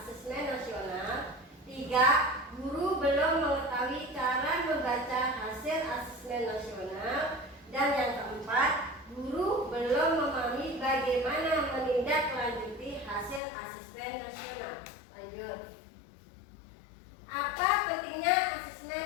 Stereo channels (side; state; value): right; drops out; at 13.4 s